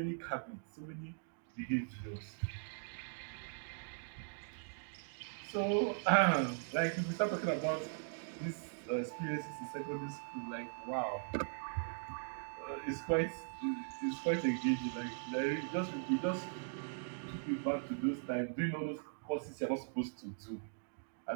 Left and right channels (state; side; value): silent; left; digital silence